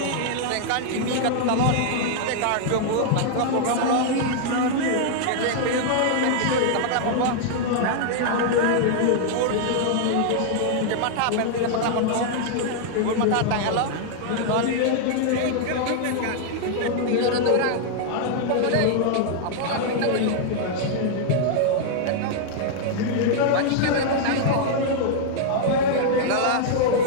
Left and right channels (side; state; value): both; different; correlation -0.01